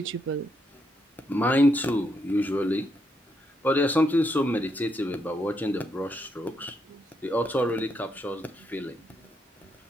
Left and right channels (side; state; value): both; normal; correlation 0.78